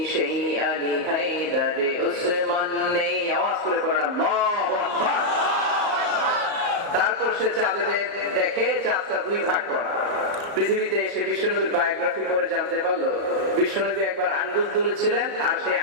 সেই আলী হায়দারে উসমান নেই। আওয়াজ করে পড়েন আল্লাহু আকবার। তারপর সে চাঁদের দেখে চাঁদটা 2 ভাগ করা। পৃথিবীতে এসে বিশ্বনবীর বায়োগ্রাফি করে জানতে পারলো বিশ্বনবী একবার আঙ্গুল তুলেছিলেন, আর সেই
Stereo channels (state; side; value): late; left; 34 ms